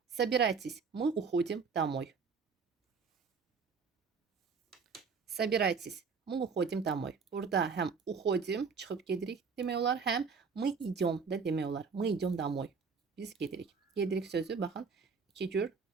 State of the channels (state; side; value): quieter; left; 5.3 dB